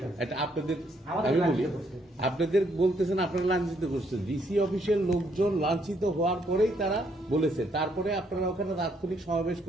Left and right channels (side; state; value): both; normal; correlation 0.72